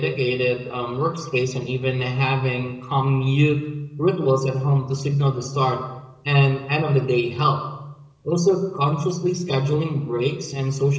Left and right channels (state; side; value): identical; both; correlation 1.00